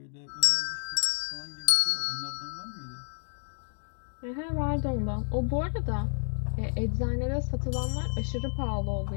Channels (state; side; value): silent; right; digital silence